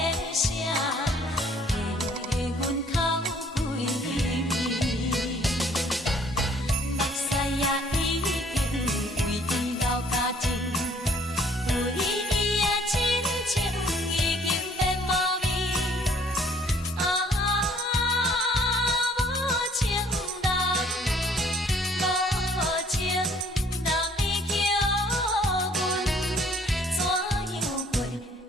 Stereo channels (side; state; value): both; normal; correlation 0.59